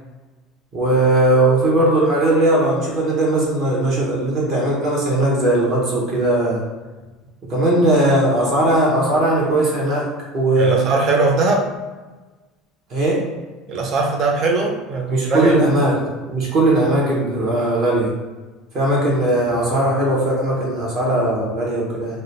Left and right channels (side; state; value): both; normal; correlation 0.31